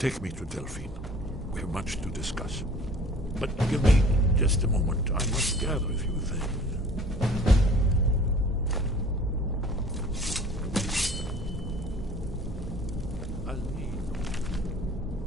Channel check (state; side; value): normal; both; correlation 0.49